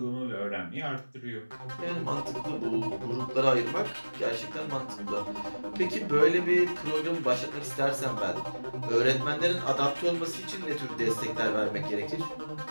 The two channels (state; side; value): inverted; both; correlation -1.00